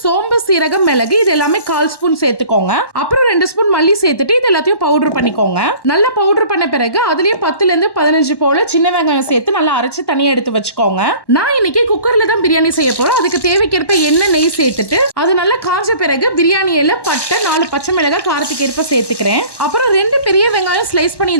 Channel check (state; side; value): late; right; 1.1 ms